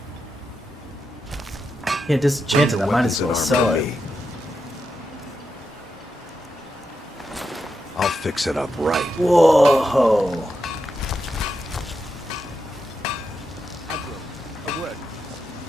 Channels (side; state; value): both; normal; correlation 0.86